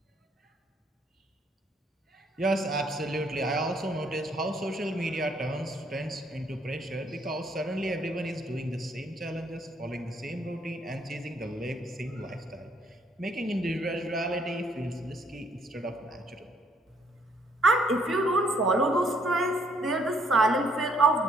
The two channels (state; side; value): normal; both; correlation 0.67